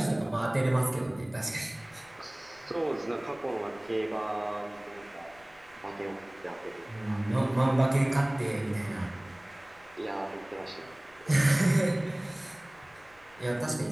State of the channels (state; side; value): noise; left; rumble, 28 dB below the sound